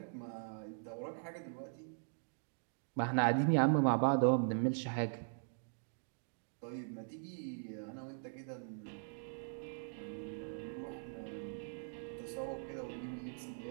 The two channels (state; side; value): silent; left; digital silence